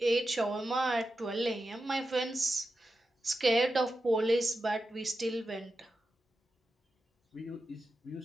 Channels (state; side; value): normal; both; correlation 0.90